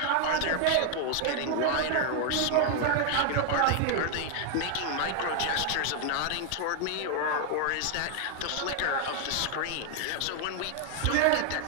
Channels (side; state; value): both; different; correlation 0.00